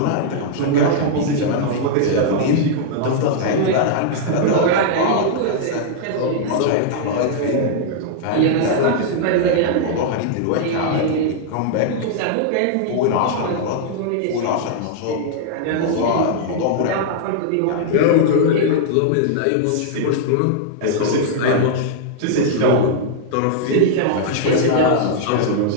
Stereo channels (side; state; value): both; different; correlation -0.01